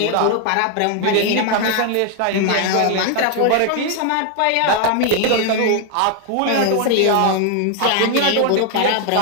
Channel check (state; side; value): different; both; correlation 0.00